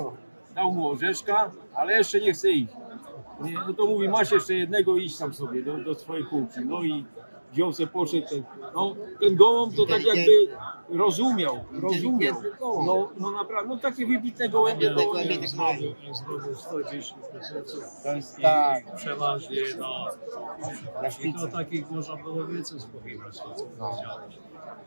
dał mu orzeszka, ale jeszcze nie chce iść. No to mówi, masz jeszcze jednego, idź tam sobie do swojej półki. No i wziął se, poszedł. Ten gołąb to tak jakby rozumiał. No naprawdę, no takie wybitne gołębie. znowu 110 To jest tak. przeważnie i to takich można było więcej spowiadać, co powiedziałeś.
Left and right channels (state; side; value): inverted; both; correlation -1.00